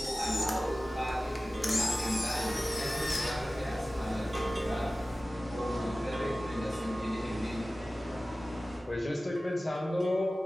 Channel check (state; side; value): normal; both; correlation 0.96